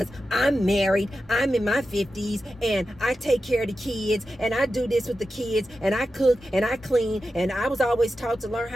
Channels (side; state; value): both; normal; correlation 0.91